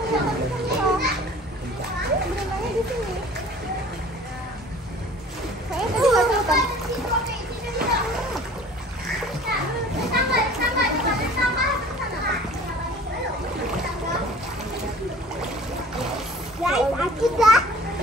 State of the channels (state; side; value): normal; both; correlation 0.47